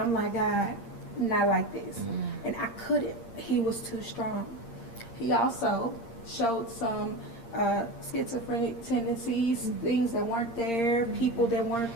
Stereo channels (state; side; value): late; right; 8.7 ms